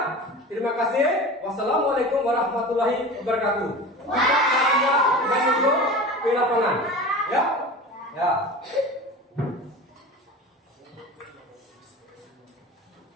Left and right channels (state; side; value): normal; both; correlation 0.34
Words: Terima kasih. Wassalamualaikum warahmatullahi wabarakatuh. Kita masuk ke lapangan. Ya? Ya.